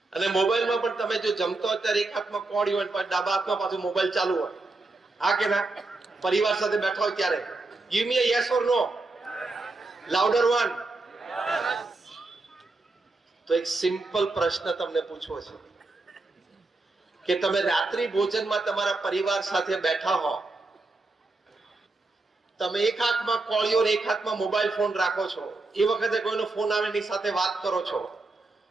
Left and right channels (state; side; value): quieter; left; 3.3 dB